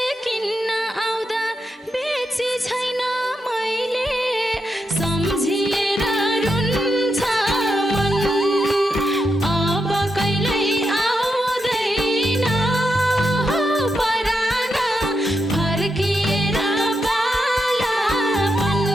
किन्न आउँदा बेची छैन मैले सम्झिएर रुन्छ मन अब कहिल्यै आउँदैन हो परान फर्किएर बालापन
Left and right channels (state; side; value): normal; both; correlation 0.85